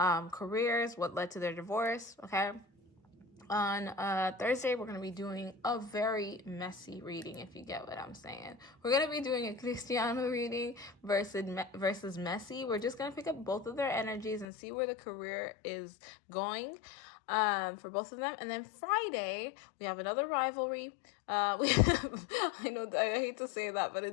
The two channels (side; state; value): right; drops out; at 14.5 s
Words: what led to their divorce, okay? On Thursday, we're going to be doing a very messy reading, if you get what I'm saying. We're going to be doing a Cristiano reading versus messy. We're just going to pick up both of their energies and see where the career is going for both of them. And then Friday, we have another rivalry. We have, I know I hate to say that, but